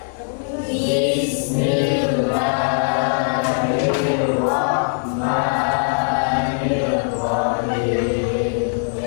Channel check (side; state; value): right; silent; digital silence